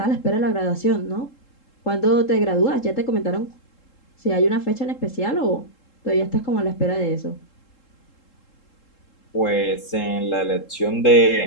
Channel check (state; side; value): late; right; 3.7 ms